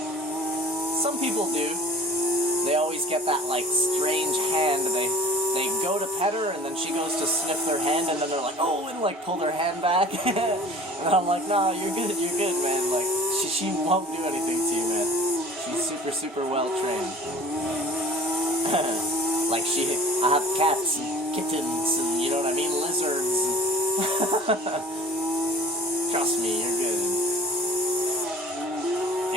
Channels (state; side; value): normal; both; correlation 0.47